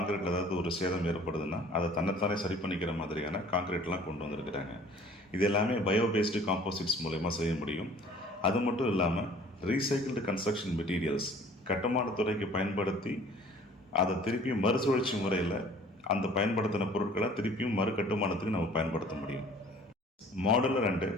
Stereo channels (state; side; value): normal; both; correlation 0.51